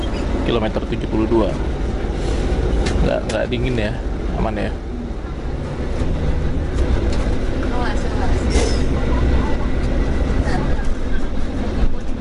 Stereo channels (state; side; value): identical; both; correlation 1.00